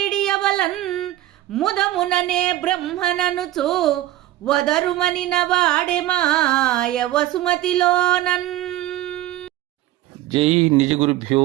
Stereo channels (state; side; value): quieter; left; 14.9 dB